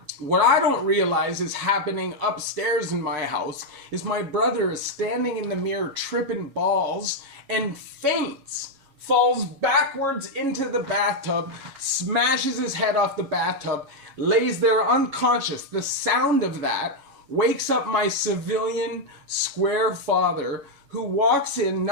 What I don't realize is happening upstairs in my house is my brother is standing in the mirror tripping balls and faints, falls backwards into the bathtub, smashes his head off the bathtub, lays there unconscious. The sound of that wakes up my civilian square father, who walks in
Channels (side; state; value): left; late; 7.3 ms